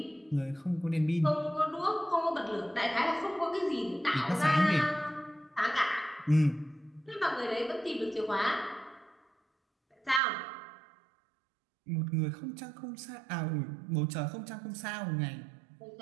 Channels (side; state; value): left; drops out; at 10.2 s